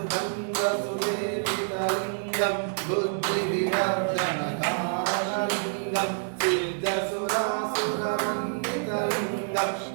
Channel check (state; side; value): silent; left; digital silence